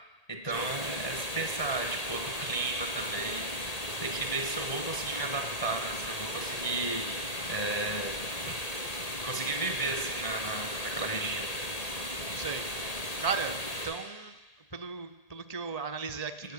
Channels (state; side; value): late; right; 1.8 ms